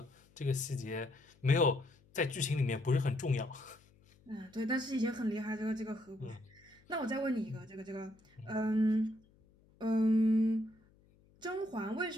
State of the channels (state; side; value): noise; left; hum, 30 dB below the sound